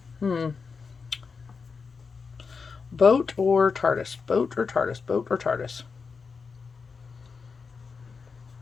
Boat or TARDIS? Boat or TARDIS? Boat or TARDIS?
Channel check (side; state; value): right; quieter; 5.2 dB